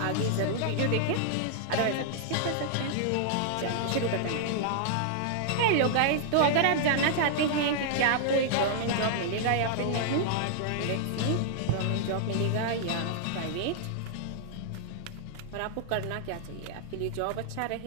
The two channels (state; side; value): different; both; correlation -0.01